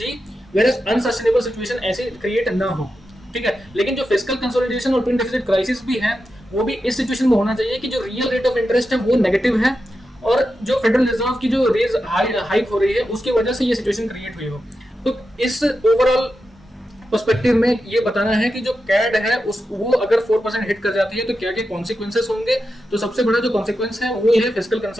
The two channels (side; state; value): both; normal; correlation 0.89